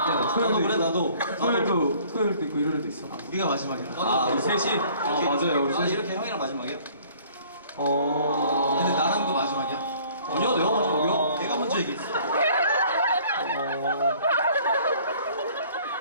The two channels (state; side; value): inverted; both; correlation -0.55